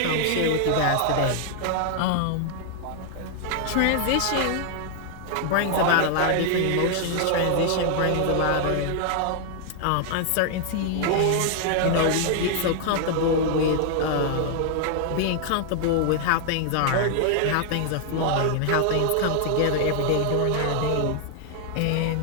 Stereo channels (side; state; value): both; different; correlation 0.00